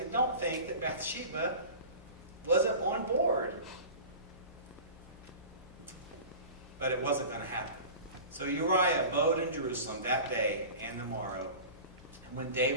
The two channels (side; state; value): both; inverted; correlation -0.36